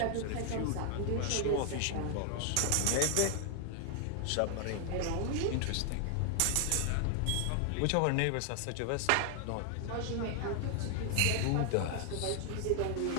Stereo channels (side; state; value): both; different; correlation 0.00